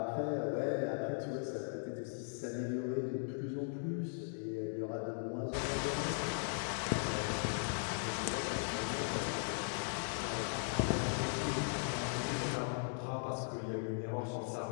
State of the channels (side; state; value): right; silent; digital silence